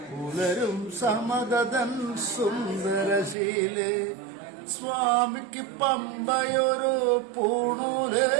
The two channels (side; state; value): left; drops out; at 3.4 s